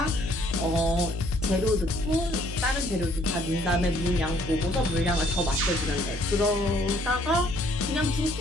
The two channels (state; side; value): normal; both; correlation 0.63